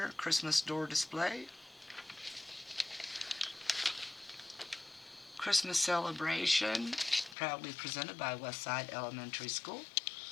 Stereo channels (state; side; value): drops out; right; at 7.4 s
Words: Christmas door display. Christmas celebration, proudly presented by Westside Elementary School.